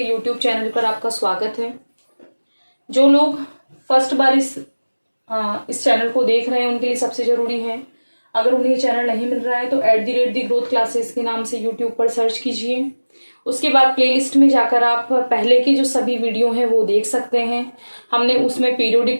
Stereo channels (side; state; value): both; inverted; correlation -1.00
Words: YouTube channel पर आपका स्वागत है। जो लोग फर्स्ट बार इस चैनल को देख रहे हैं उनके लिए सबसे ज़रूरी है, अगर उन्हें चैनल नहीं मिल रहा है तो @ दी ग्रोथ क्लासेस के नाम से यूट्यूब पर सर्च कीजिए। उसके बाद प्लेलिस्ट में जाकर आप पहले के जो सभी वीडियो हैं वो देख सकते हैं। हमने उसमें